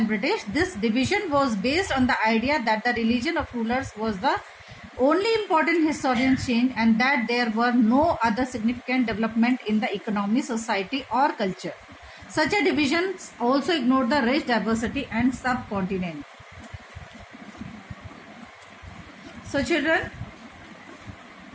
British. This division was based on the idea that the religion of rulers was the only important historical change and that there were no other significant development in the economy, society or culture. Such a division also ignored the rich diversity and subcontinent. So children,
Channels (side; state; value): both; identical; correlation 1.00